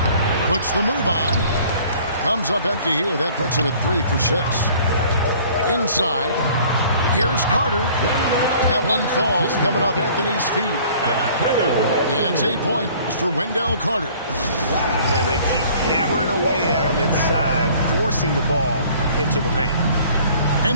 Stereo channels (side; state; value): both; inverted; correlation -0.53